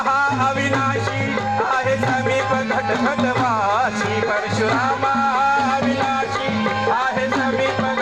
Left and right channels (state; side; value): noise; right; rumble, 25 dB below the sound